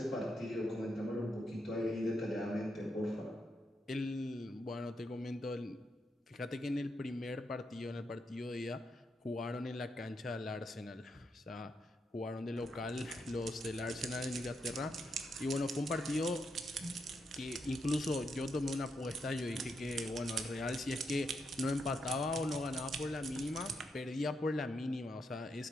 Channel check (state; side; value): normal; both; correlation 0.81